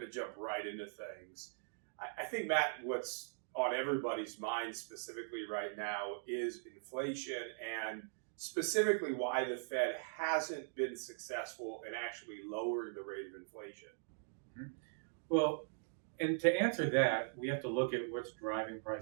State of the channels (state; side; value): silent; left; digital silence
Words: to jump right into things. I think, Matt, what's on everybody's mind specifically right now is inflation and specifically why the Fed hasn't been successful in actually lowering the rate of inflation. Well, and to answer that, we have to look at what's driving